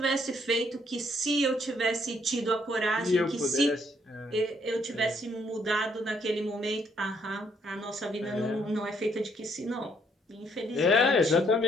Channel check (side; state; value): both; normal; correlation 0.69